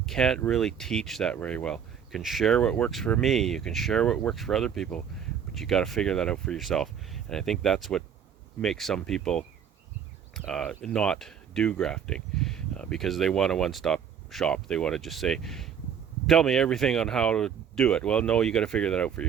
Can't really teach that very well. You can share what works for me, you can share what works for other people, but you got to figure that out for yourself. And I think that's what makes some people not do grafting, because they want a one-stop shop. They want to just say, tell me everything on how to do it. Well, no, you got to figure that out for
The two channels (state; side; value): quieter; left; 8.0 dB